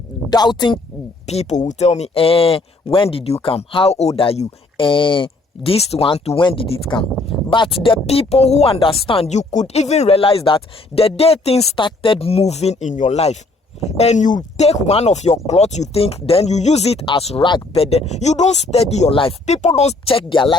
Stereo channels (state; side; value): quieter; right; 3.1 dB